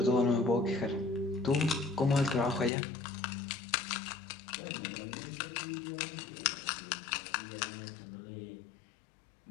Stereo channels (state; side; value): drops out; right; at 2.7 s